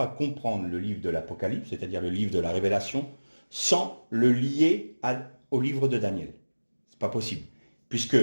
comprendre le livre de l'Apocalypse, c'est-à-dire le livre de la Révélation, sans le lier au livre de Daniel. C'est pas possible, puisque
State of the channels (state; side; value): inverted; both; correlation -1.00